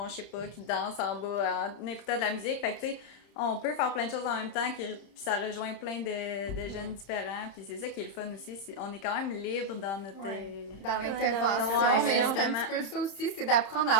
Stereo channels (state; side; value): late; right; 31 ms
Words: je sais pas qui dansent en bas en écoutant de la musique, fait que tu sais on peut faire plein de choses en même temps, puis ça rejoint plein de jeunes différents, puis c'est ça qui est le fun aussi, on est quand même libre dans notre... Ouais. Dans Ouais, l'intervention, mais c'est un vraiment. petit peu ça aussi, c'est d'apprendre à